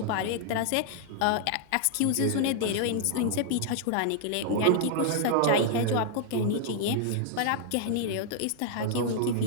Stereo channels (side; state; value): both; different; correlation 0.00